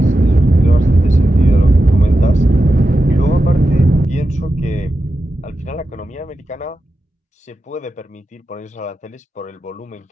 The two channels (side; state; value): both; normal; correlation 0.91